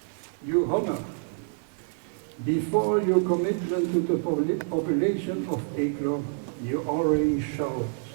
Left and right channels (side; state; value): left; silent; 60 dB below the other